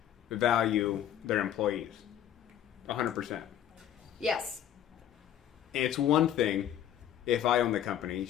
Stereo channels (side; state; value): right; quieter; 10.6 dB